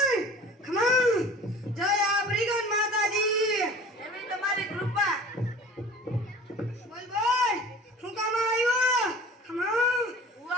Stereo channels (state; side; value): normal; both; correlation 0.43